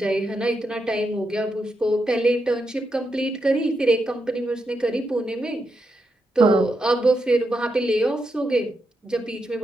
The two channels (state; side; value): normal; both; correlation 0.84